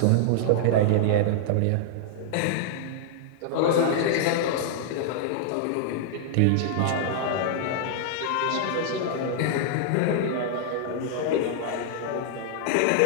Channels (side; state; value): both; different; correlation -0.01